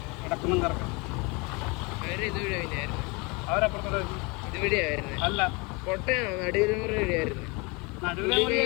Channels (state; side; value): quieter; right; 27.9 dB